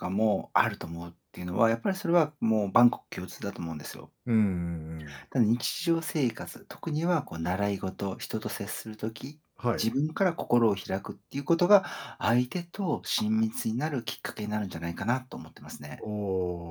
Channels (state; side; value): identical; both; correlation 1.00